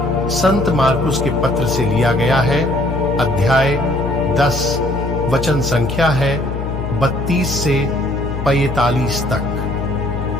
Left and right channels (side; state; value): left; noise; hum, 5 dB below the sound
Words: संत मार्कुस के पत्र से लिया गया है। अध्याय 10 वचन संख्या है 32 से 45